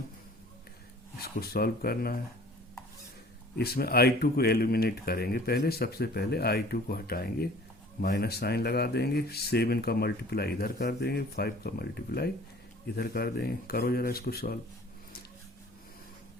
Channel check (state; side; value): normal; both; correlation 0.49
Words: इसको सॉल्व करना है। इसमें i2 को एलिमिनेट करेंगे। पहले सबसे पहले i2 को हटाएंगे, माइनस साइन लगा देंगे, 7 का मल्टीप्लाई इधर कर देंगे, 5 का मल्टीप्लाई इधर कर देंगे। करो जरा इसको सॉल्व।